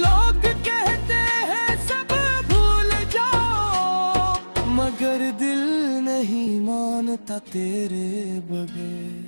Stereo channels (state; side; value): inverted; both; correlation -1.00